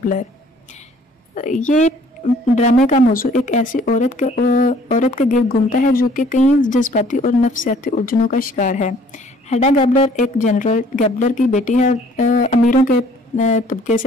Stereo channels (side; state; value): both; normal; correlation 0.57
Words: ये ड्रामे का मौजू एक ऐसी औरत के गिर्द घूमता है जो कि कई जज्बाती और नफ्सियाती उलझनों का शिकार है। हेडा गैबलर एक जनरल गैबलर की बेटी है और अमीरों के तबके से